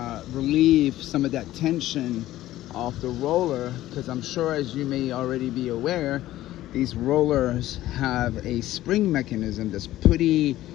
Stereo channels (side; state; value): right; quieter; 14.9 dB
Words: relieve some of that tension off the roller, because I'm sure, as you may already be aware, these rollers have a spring mechanism that's pretty